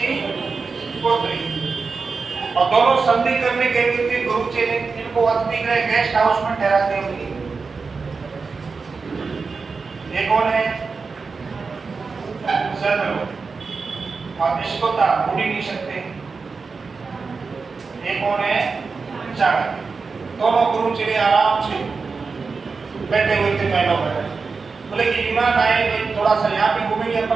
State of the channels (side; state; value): left; quieter; 4.6 dB